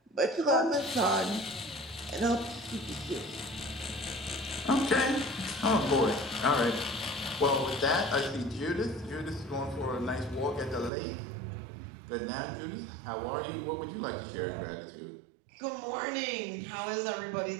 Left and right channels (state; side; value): drops out; left; at 10.9 s